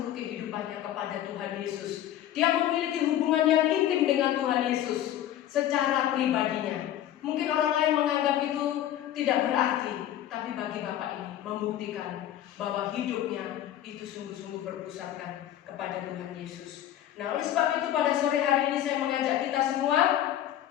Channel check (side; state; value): right; quieter; 12.0 dB